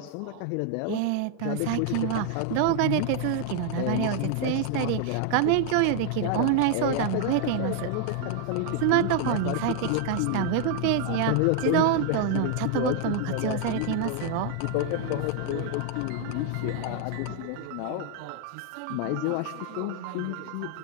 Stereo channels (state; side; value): different; both; correlation 0.00